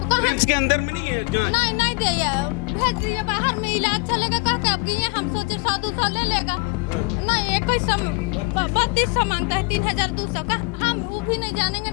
तो रिम्स के अंदर में नहीं है जांच? नहीं दिया, भेज दिए बाहर में, इलाज चलेगा कह के। अब ये हम सोचे 100-200 ले लेगा, नहीं 3200 मांगता है, 3200 का। हम वो भी नहीं जानेंगे,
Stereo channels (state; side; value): quieter; right; 27.2 dB